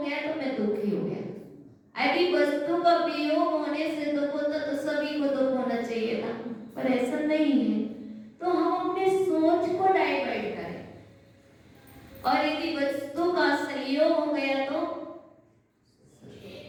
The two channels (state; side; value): identical; both; correlation 1.00